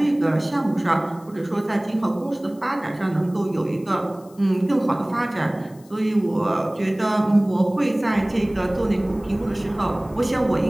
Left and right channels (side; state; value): left; noise; hiss, 28 dB below the sound